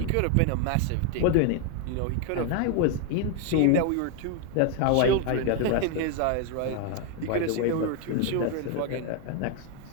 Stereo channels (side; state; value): both; different; correlation 0.01